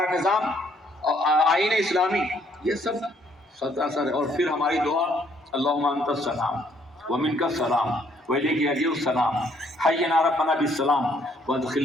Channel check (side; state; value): both; normal; correlation 0.67